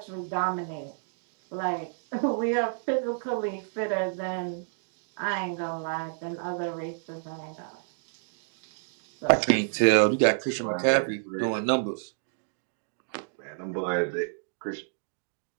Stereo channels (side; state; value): left; silent; digital silence